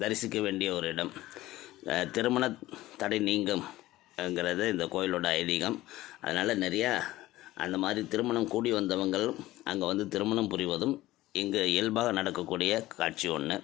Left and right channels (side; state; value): right; quieter; 16.7 dB